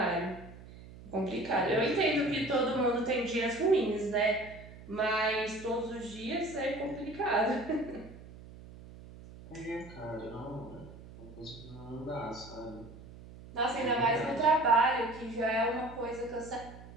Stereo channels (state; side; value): noise; right; hum, 17 dB below the sound